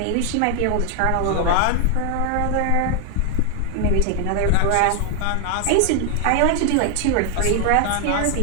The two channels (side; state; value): both; different; correlation 0.00